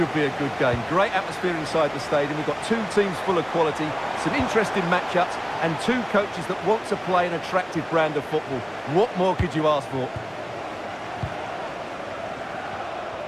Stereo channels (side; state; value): both; identical; correlation 1.00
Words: be a good game. Great atmosphere inside the stadium. We've got two teams full of quality, some interesting matchups, and two coaches that want to play an attractive brand of football. What more could you ask for?